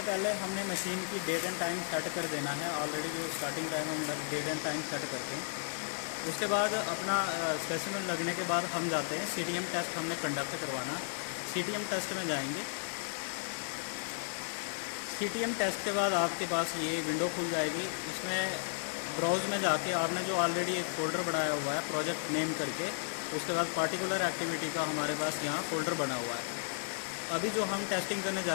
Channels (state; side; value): silent; right; digital silence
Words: पहले हमने मशीन की डेट एंड टाइम सेट कर देना है। ऑलरेडी जो स्टार्टिंग टाइम हम डेट एंड टाइम सेट करते हैं। उसके बाद अपना स्पेसिमेन लगने के बाद हम जाते हैं CTM टेस्ट हमने कंडक्ट करवाना। CTM टेस्ट में जाएंगे। CTM टेस्ट के बाद आपके पास ये विंडो खुल जाएगी। इसमें ब्राउज में जाके आपने जो ऑलरेडी एक फ़ोल्डर बनाया हुआ है प्रोजेक्ट नेम करके, उसके बाद पार्टिकुलर एक्टिविटी का हमारे पास यहाँ फ़ोल्डर बना हुआ है। अभी जो हम टेस्टिंग करने जा